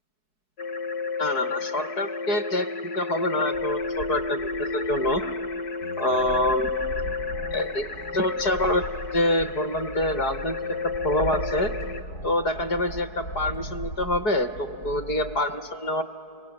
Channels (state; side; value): late; right; 4.7 ms